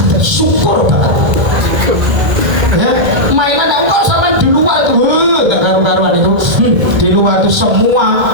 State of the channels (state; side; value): late; left; 1.8 ms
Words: syukur banget. Ya, mainan yang kok sama di luar itu, gak karu-karuan itu. Di luar itu